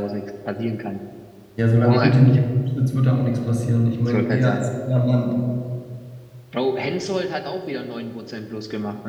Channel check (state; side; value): identical; both; correlation 1.00